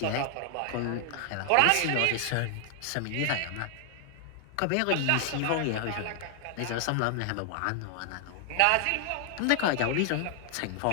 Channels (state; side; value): different; both; correlation 0.00